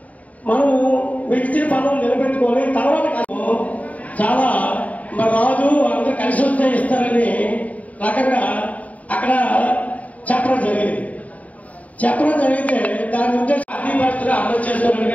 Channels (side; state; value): right; late; 0.070 ms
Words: మనం విడిచిన పనులు నిలబెట్టుకొని తర్వాత చాలా మన రాజు అందరూ కలిసి వస్తే ఇస్తారని రకంగా అక్కడ చెప్పడం జరిగితే దాని ఉద్దేశం అన్ని పరిస్థితులు అమలు చేసుకోవడానికి